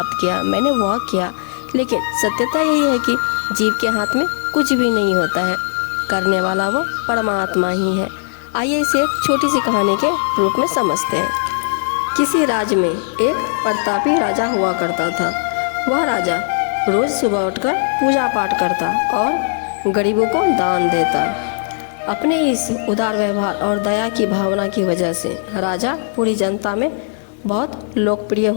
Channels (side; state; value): right; silent; digital silence